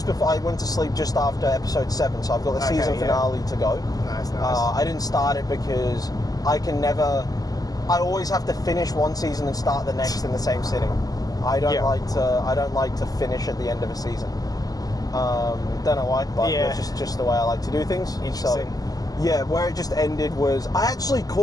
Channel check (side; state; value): right; late; 0.18 ms